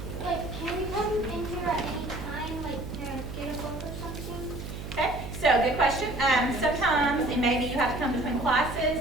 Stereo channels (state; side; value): noise; right; hum, 8 dB below the sound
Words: Like, can we come in here at any time, like, to get a book or something? Okay, so good question. Sometimes, and maybe you have to come between